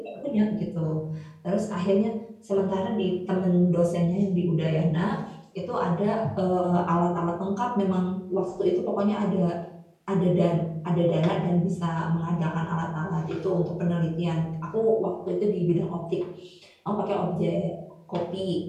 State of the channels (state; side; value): identical; both; correlation 1.00